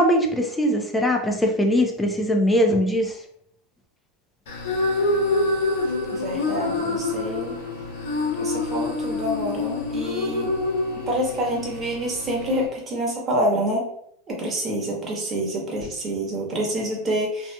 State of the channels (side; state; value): both; normal; correlation 0.17